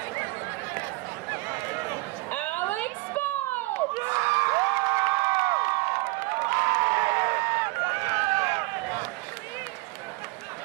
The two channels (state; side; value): quieter; left; 23.5 dB